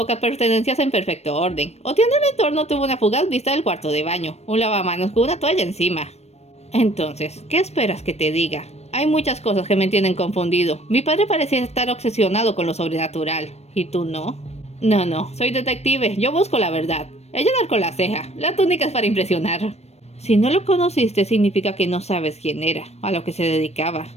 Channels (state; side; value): late; right; 0.31 ms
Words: pertenencias en perfecto orden. Oteando el entorno tuvo una fugaz vista del cuarto de baño, un lavamanos con una toalla encima. Entonces, ¿qué esperas que te diga? Hay muchas cosas que me tienen confundido. Mi padre parecía estar obsesionado con lo sobrenatural. ¿Y tú no? No, soy detective, yo busco la verdad. Ella narcó la ceja, la túnica es para impresionar. Si no lo conociste significa que no sabes quién era, a lo que se dedicaba.